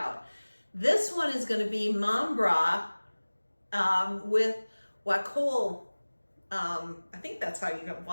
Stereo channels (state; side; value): inverted; both; correlation -1.00